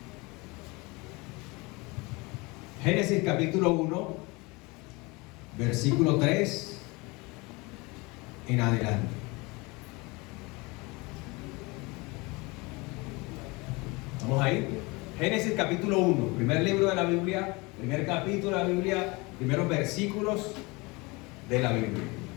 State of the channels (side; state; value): right; quieter; 25.5 dB